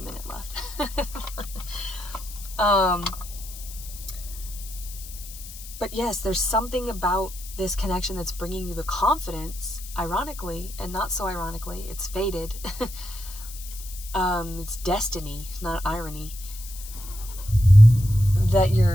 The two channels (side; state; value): left; noise; hiss, 14 dB below the sound